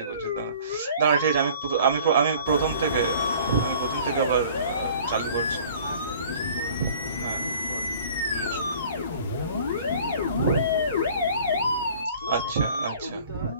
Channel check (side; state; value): both; inverted; correlation -0.50